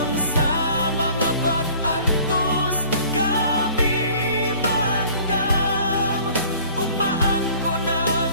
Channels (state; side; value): inverted; both; correlation -0.50